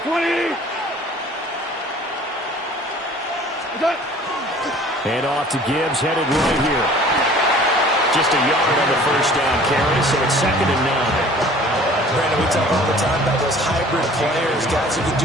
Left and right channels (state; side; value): normal; both; correlation 0.49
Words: 20! Hand off to Gibbs, headed right here. Just a yard on the 1st down carry, so it's 2nd and 9. Brandon, we talk all the time about those hybrid players, guys who can